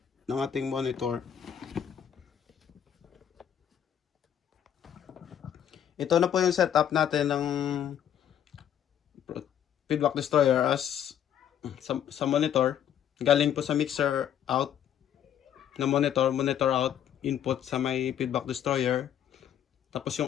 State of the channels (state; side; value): quieter; right; 9.7 dB